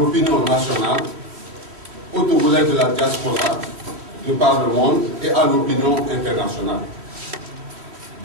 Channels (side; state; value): left; late; 3.2 ms